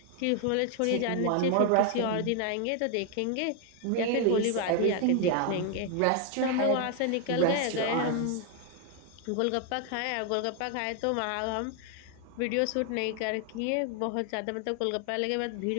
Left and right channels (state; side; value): different; both; correlation 0.01